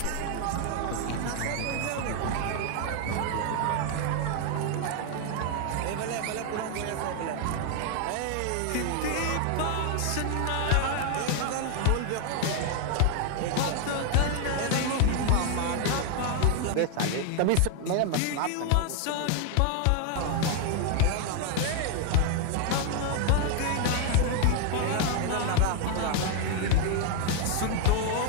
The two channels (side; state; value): both; different; correlation 0.00